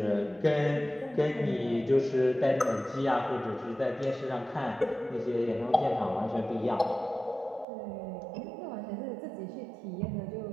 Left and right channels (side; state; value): left; drops out; at 7.7 s